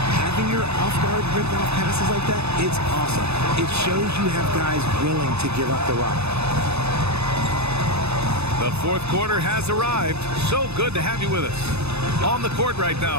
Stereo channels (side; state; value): left; late; 0.80 ms